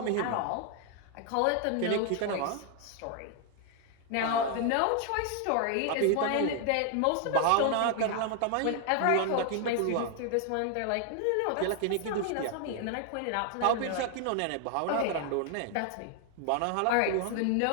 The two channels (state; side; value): different; both; correlation 0.00